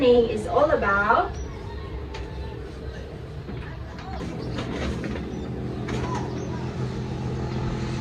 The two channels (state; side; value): identical; both; correlation 1.00